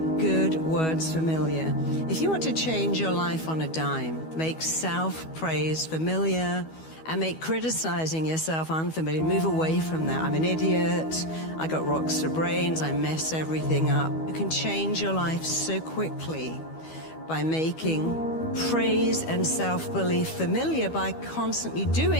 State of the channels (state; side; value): late; right; 12 ms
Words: good words familiar. If you want to change your life on a dime, make self-praise familiar and make criticizing yourself unfamiliar. Move away from that. I'm an idiot. I got rocks for brains. I mess everything up. You can change your life so quickly by making praise and self-belief familiar by constantly